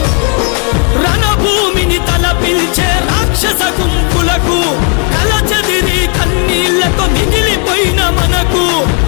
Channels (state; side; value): quieter; right; 39.1 dB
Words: రణభూమిని తలపిల్చే రాక్షస గుంపులకు కలచెదిరి కన్నీళ్లతో మిగిలిపోయిన మనకు